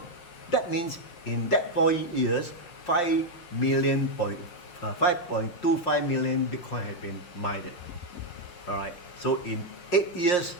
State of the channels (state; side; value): late; right; 5.7 ms